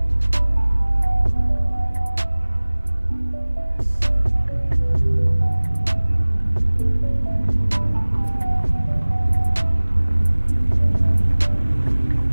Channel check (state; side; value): inverted; both; correlation -1.00